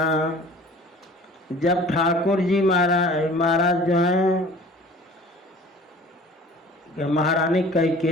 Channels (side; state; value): both; normal; correlation 0.46